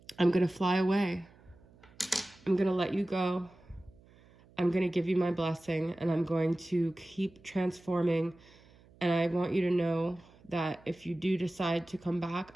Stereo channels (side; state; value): right; noise; hum, 27 dB below the sound